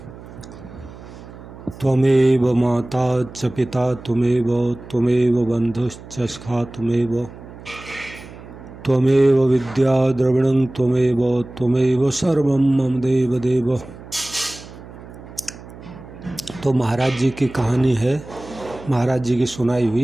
त्वमेव माता च पिता त्वमेव त्वमेव बन्धुश्च सखा त्वमेव त्वमेव विद्या द्रविणं त्वमेव त्वमेव सर्वं मम देव देव। तो महाराज जी की कहानी है, महाराज जी की सुनाई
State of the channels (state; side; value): noise; right; hum, 17 dB below the sound